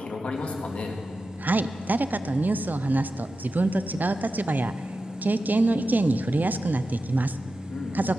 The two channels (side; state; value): both; normal; correlation 0.92